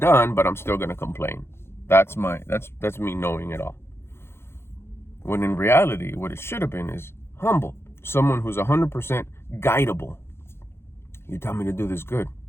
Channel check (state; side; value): late; right; 0.12 ms